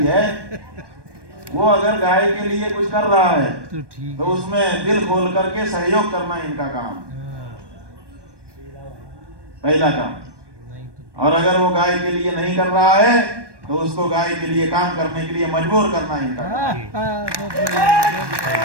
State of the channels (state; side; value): late; left; 1.2 ms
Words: है, वो अगर गाय के लिए कुछ कर रहा है तो उसमें दिल खोल करके सहयोग करना इनका काम, पहला काम। और अगर वो गाय के लिए नहीं कर रहा है तो उसको गाय के लिए काम करने के लिए मजबूर करना इनका काम।